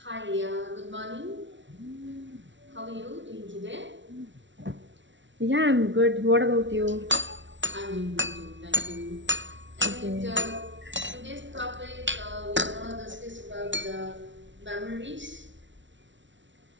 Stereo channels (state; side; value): late; left; 0.55 ms